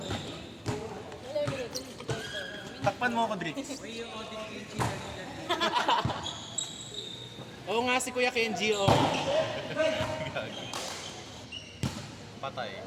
Takpan mo ako, Drix. Oo nga, si Kuya Kenji, oh. Patay.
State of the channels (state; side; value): identical; both; correlation 1.00